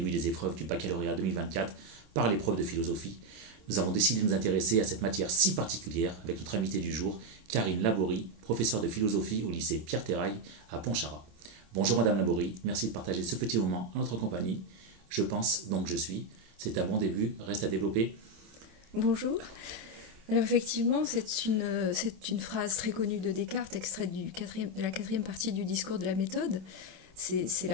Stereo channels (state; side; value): late; left; 26 ms